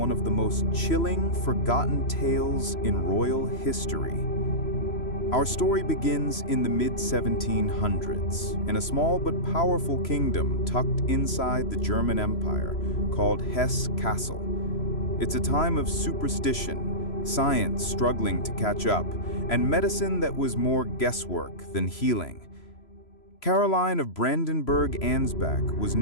of the most chilling, forgotten tales in royal history. Our story begins in the mid-1700s, in a small but powerful kingdom tucked inside the German Empire called Hesse Castle. It's a time of superstition, science struggling to catch up, and medicine that was more guesswork than healing. Caroline of Brandenburg-Ansbach was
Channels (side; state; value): right; late; 3.0 ms